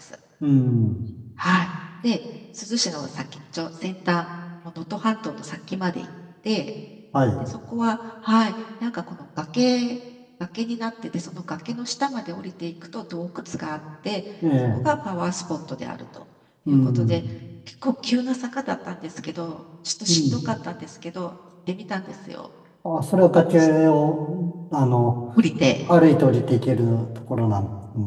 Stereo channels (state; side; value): identical; both; correlation 1.00